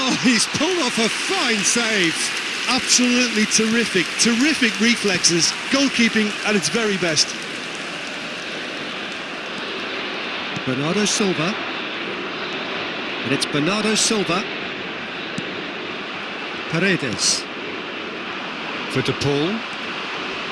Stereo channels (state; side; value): identical; both; correlation 1.00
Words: he's pulled off a fine save. Absolutely terrific, terrific reflexes. Goalkeeping at its very best. Bernardo Silva. And it's Bernardo Silva. Paredes. For De Paul.